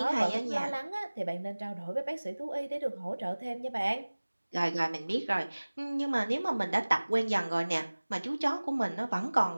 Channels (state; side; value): inverted; both; correlation -1.00